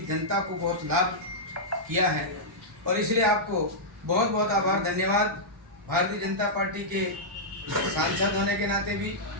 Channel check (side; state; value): both; normal; correlation -0.10